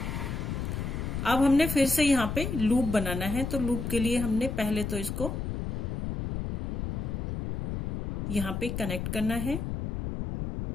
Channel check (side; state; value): left; noise; rumble, 3 dB below the sound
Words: अब हमने फिर से यहाँ पे लूप बनाना है, तो लूप के लिए हमने पहले तो इसको यहाँ पे कनेक्ट करना है,